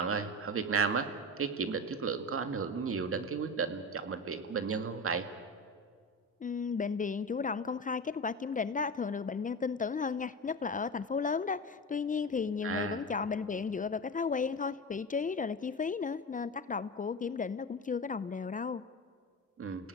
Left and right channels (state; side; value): normal; both; correlation 0.25